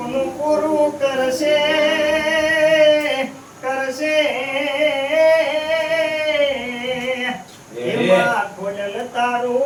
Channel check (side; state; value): both; identical; correlation 1.00